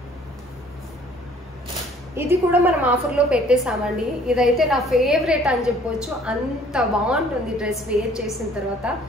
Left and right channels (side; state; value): both; normal; correlation 0.56